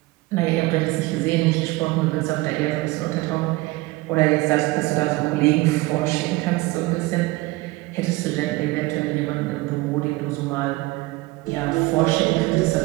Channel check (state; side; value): quieter; left; 21.1 dB